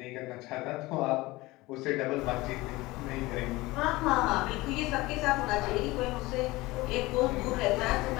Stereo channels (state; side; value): quieter; right; 20.5 dB